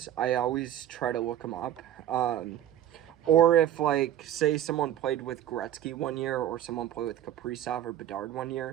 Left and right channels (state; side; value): quieter; left; 11.5 dB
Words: I always try to look them up. Or if, like, say someone played with Gretzky one year, or someone played with Kaprizov or Bedard one